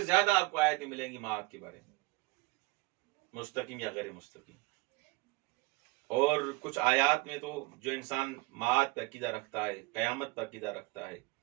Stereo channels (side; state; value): left; quieter; 22.9 dB